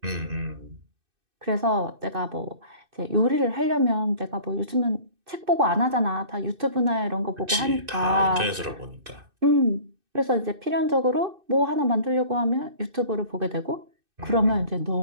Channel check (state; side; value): late; left; 2.6 ms